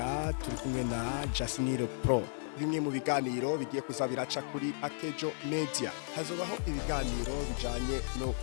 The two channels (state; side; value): silent; right; 55 dB below the other